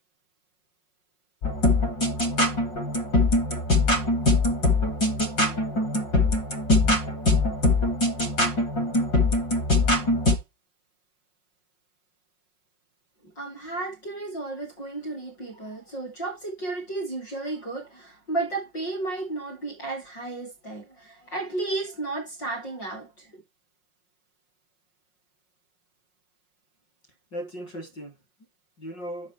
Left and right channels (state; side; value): late; right; 5.5 ms